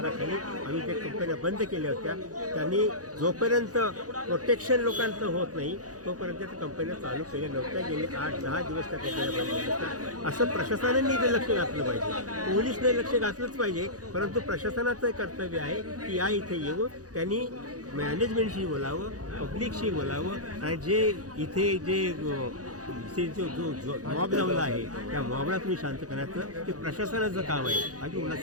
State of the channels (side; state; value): left; late; 0.67 ms